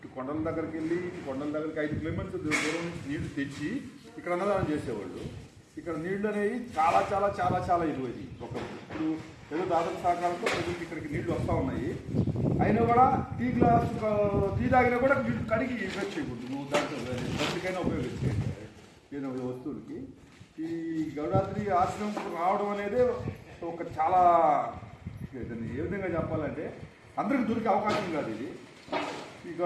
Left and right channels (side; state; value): both; identical; correlation 1.00